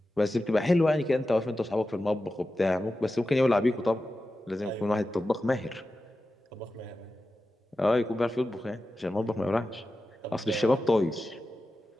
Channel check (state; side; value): normal; both; correlation 0.93